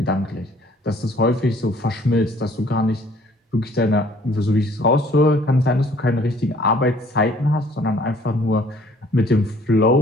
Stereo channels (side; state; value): both; normal; correlation 0.57